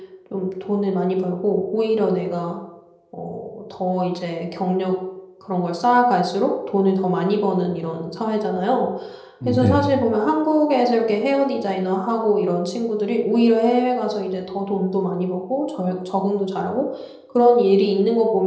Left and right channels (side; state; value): both; identical; correlation 1.00